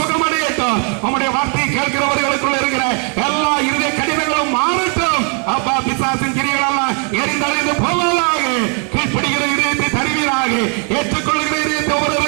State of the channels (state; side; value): quieter; left; 34.2 dB